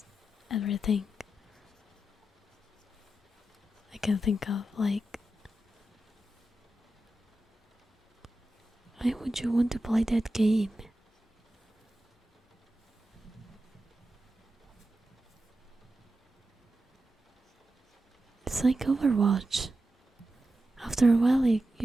everything I can think of. Like, why would you want to play that game? It's like Overwatch. After a while,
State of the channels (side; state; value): both; normal; correlation 0.91